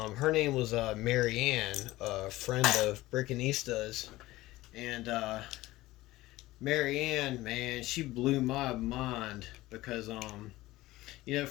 Her name was Mary Ann, a friend of Brickanista's, and Mary Ann, man, she blew my mind because, you know,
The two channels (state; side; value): quieter; right; 17.8 dB